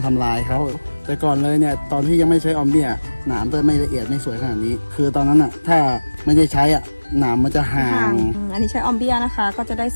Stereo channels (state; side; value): inverted; both; correlation -1.00